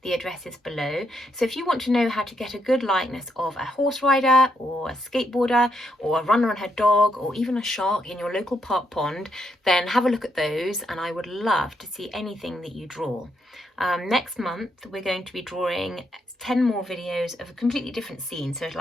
The address is below. So if you want to know how to get a good likeness of a horse rider or a skateboarder or a runner and her dog or even a shark in your local park pond, then have a look at those, and I would love to see anything that you draw. Next month we're going to be drawing 10 more videos of a completely different scene, so it'll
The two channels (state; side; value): normal; both; correlation 0.78